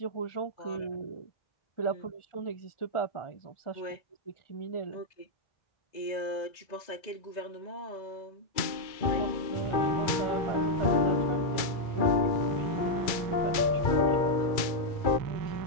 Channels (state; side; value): late; right; 2.2 ms